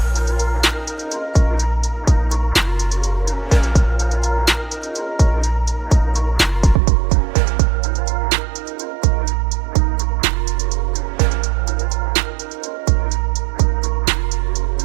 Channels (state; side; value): drops out; left; at 6.8 s